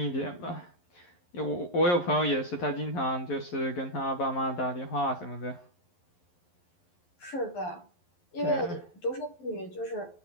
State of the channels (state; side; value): late; right; 11 ms